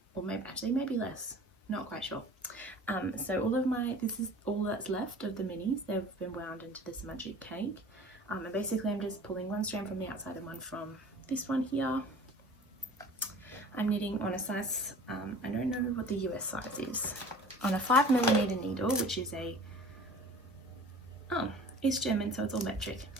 or maybe less, not quite sure. So this is all that's left of the minis. They've been wound into this magic cake, and basically I'm just pulling one strand from the outside and one from this one here. I'm knitting on a size, I don't know what the US size is, on a 5mm needle, which is a, it's German, so it's all metric.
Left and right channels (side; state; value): both; normal; correlation 0.44